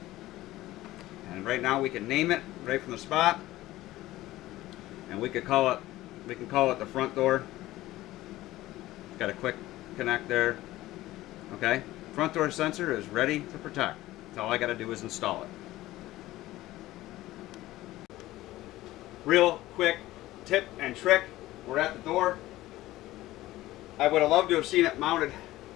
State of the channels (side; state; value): right; quieter; 16.6 dB